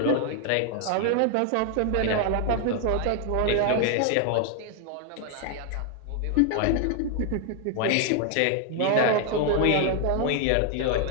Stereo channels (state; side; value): different; both; correlation 0.00